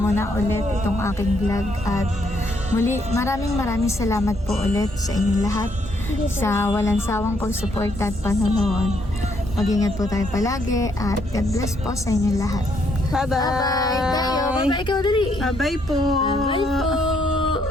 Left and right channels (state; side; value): normal; both; correlation 0.72